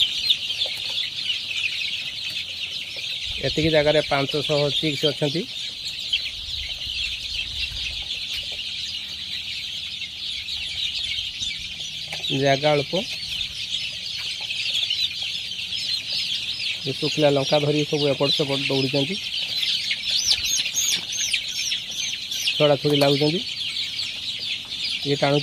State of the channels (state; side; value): identical; both; correlation 1.00